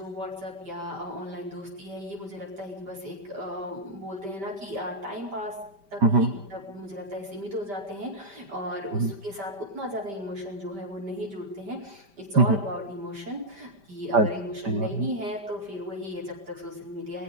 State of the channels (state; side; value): late; left; 5.1 ms